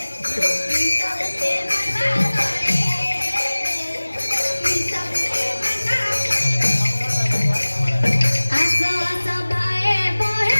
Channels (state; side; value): inverted; both; correlation -1.00